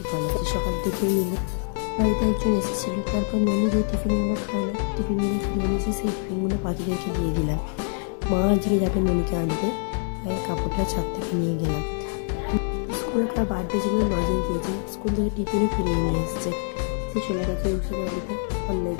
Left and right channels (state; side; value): silent; right; 57 dB below the other